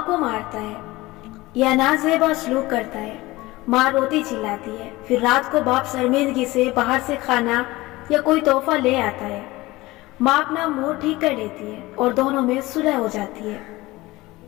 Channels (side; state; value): right; quieter; 19.8 dB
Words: کو مارتا ہے یا نازیبا سلوک کرتا ہے، ماں روتی چلاتی ہے، پھر رات کو باپ شرمندگی سے باہر سے کھانا یا کوئی تحفہ لے آتا ہے، ماں اپنا موڈ ٹھیک کر لیتی ہے اور دونوں میں صلح ہو جاتی ہے۔